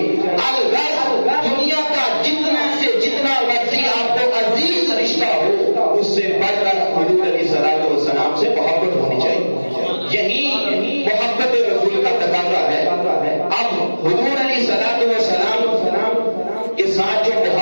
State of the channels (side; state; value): both; inverted; correlation -1.00